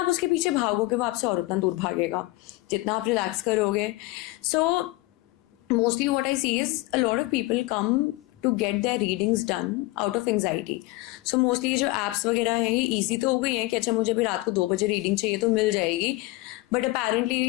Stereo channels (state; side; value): quieter; right; 20.9 dB